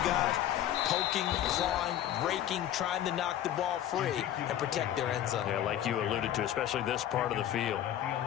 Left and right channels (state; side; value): quieter; right; 11.6 dB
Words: guys poking, clawing, raking, trying to knock the ball free and protect their end zone. Yeah, like you alluded to, especially this part of the field.